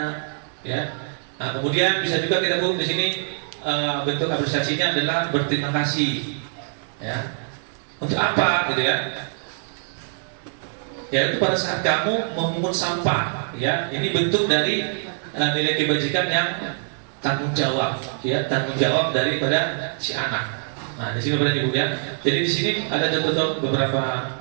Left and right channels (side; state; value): left; silent; 63 dB below the other